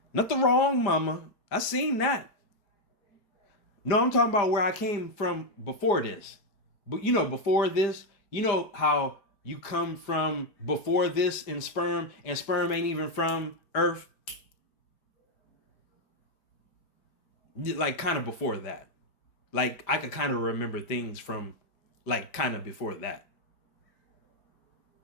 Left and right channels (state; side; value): late; right; 5.1 ms